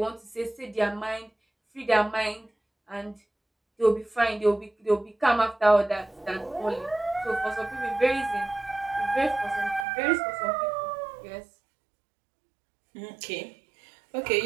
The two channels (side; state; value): left; drops out; at 9.9 s